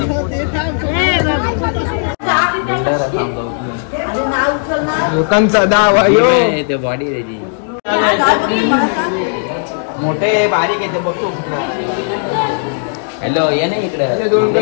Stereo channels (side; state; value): right; silent; digital silence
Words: लोकांचा दावा ते बॉडी रेडी मोठे बारीक येते बघतो. हॅलो ये ना इकडे. दोन